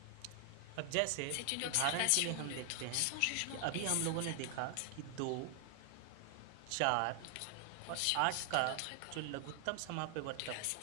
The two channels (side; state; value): both; different; correlation 0.00